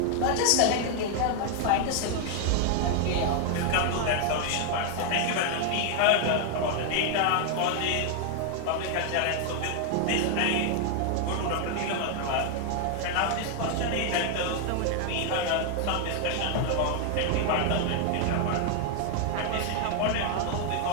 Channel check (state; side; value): different; both; correlation 0.00